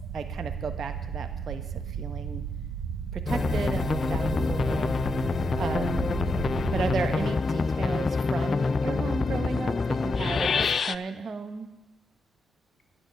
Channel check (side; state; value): both; normal; correlation 0.83